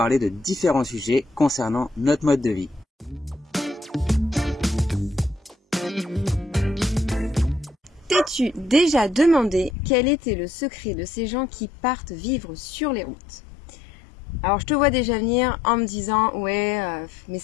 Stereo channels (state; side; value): drops out; right; at 9.7 s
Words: de différents sujets concernant notre mode de vie. T'es-tu déjà demandé quel était le secret de ces gens qui partent vivre sur les routes? Alors je te vois déjà venir en me disant ouais mais